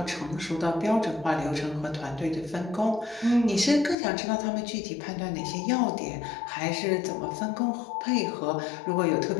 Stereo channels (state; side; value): drops out; right; at 4.0 s